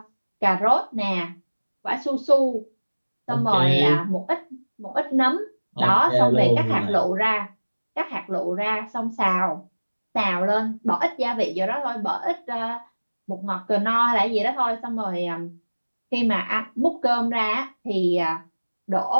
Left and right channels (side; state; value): both; inverted; correlation -1.00